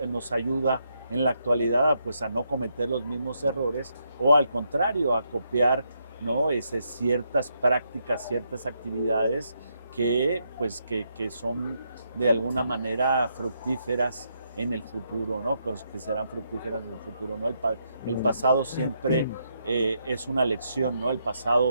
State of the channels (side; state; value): both; inverted; correlation -0.78